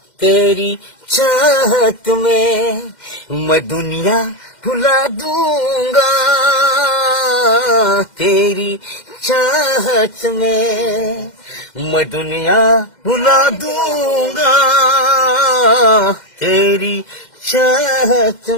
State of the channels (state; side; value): late; right; 2.1 ms